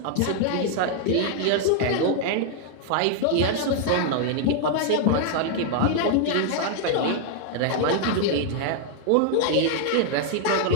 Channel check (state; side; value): different; both; correlation 0.00